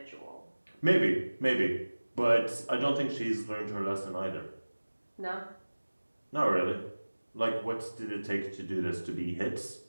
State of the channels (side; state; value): both; inverted; correlation -1.00